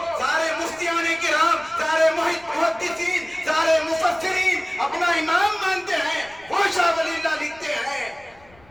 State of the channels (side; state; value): left; noise; rumble, 28 dB below the sound